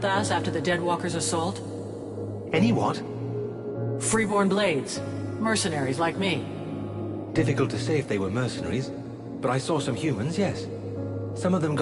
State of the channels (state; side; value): identical; both; correlation 1.00